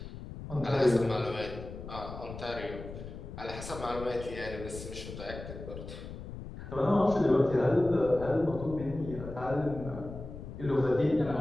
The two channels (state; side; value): noise; left; rumble, 11 dB below the sound